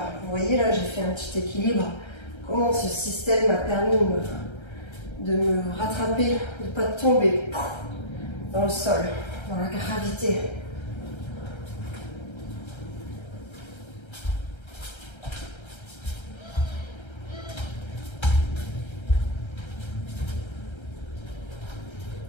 vous voyez là, j'ai fait un petit équilibre. Comment ce système m'a permis de me rattraper, de ne pas tomber dans le sol, dans la gravité.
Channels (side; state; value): right; late; 1.3 ms